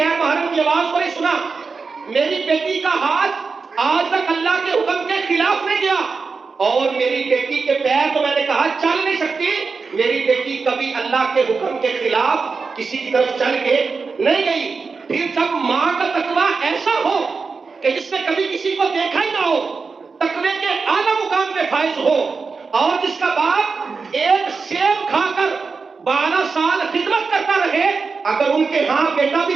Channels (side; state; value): left; quieter; 4.7 dB